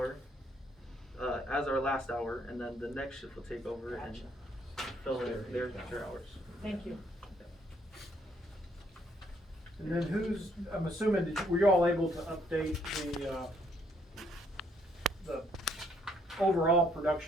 as our last hour, and then the next shift will take over and fill in their hours. Thank you. And then I'm assuming, were you all able to update the overall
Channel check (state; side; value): normal; both; correlation 0.68